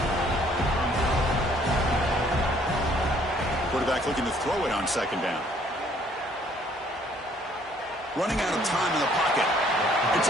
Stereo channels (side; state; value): both; normal; correlation 0.62